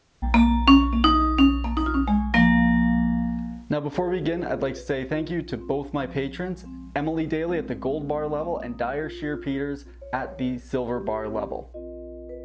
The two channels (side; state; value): both; identical; correlation 1.00